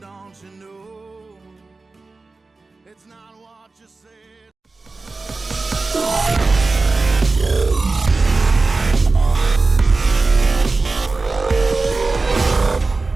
you know? It's not what you said.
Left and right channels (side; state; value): left; quieter; 3.7 dB